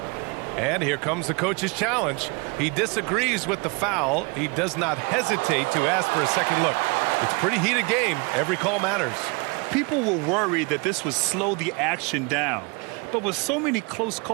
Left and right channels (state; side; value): quieter; left; 30.1 dB